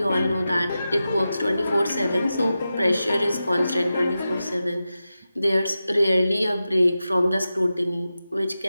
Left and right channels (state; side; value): inverted; both; correlation -0.92